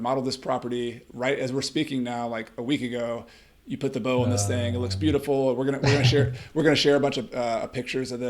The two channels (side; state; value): both; identical; correlation 1.00